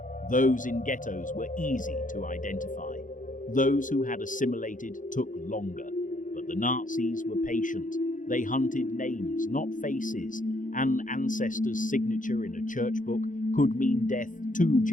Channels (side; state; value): right; late; 0.38 ms